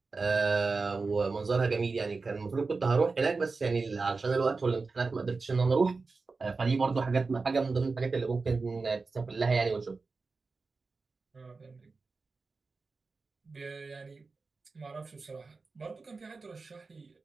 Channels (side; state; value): left; quieter; 4.1 dB